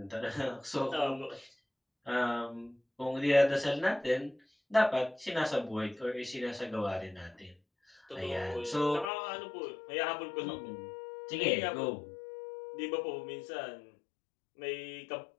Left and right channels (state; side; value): drops out; right; at 9.1 s